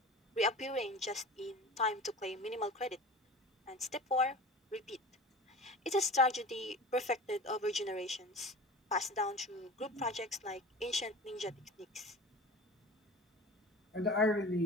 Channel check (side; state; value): both; normal; correlation 0.36